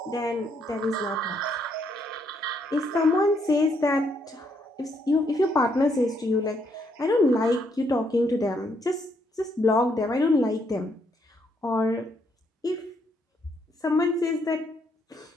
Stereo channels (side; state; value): both; normal; correlation 0.73